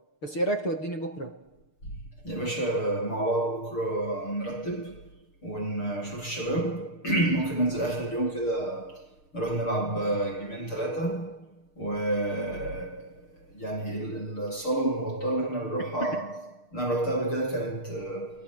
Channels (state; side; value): late; right; 6.6 ms